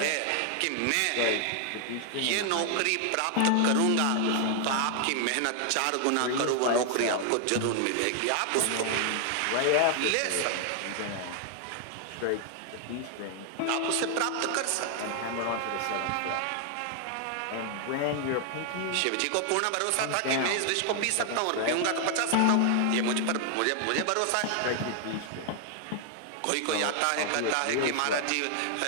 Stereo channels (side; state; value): both; different; correlation 0.00